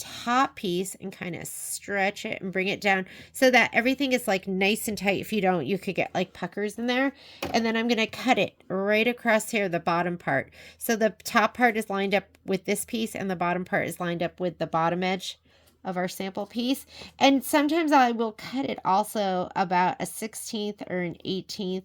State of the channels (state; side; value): identical; both; correlation 1.00